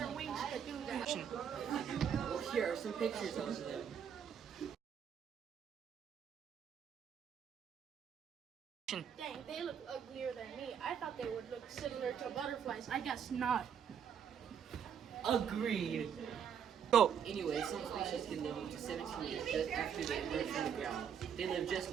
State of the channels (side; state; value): left; quieter; 8.0 dB